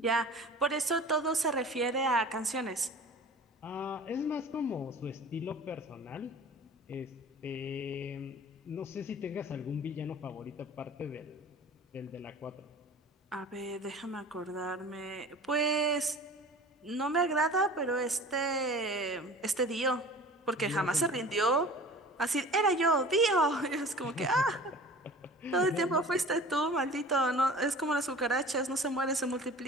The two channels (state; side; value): normal; both; correlation 0.41